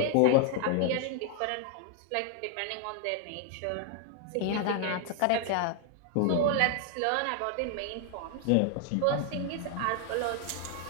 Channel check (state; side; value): different; both; correlation 0.00